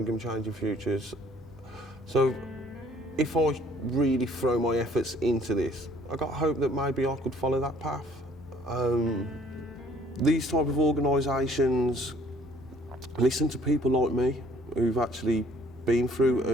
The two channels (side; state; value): both; normal; correlation 0.58